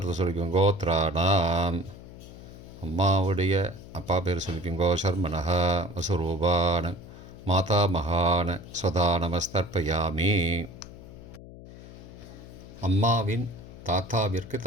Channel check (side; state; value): left; noise; hum, 16 dB below the sound